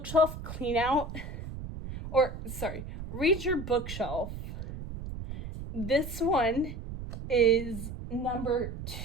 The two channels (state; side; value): noise; right; rumble, 9 dB below the sound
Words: Cleanout, Read Your Bookshelf, this one is number